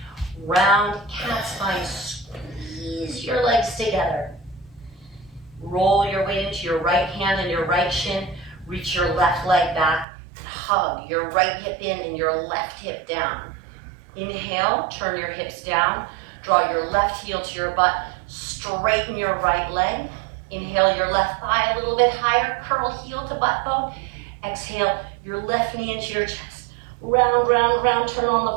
Round cat spine, squeeze your legs together. Roll your weight into your right hand and your right shin, reach your left leg back, hug your right hip in and your left hip down. Inhale, turn your hips down, draw your left heel to your butt, straighten your right leg. Inhale your left thigh a little bit higher, curl heel to butt bone. Exhale your left knee into your chest. Round, round, round, turn on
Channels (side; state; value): left; drops out; at 10.1 s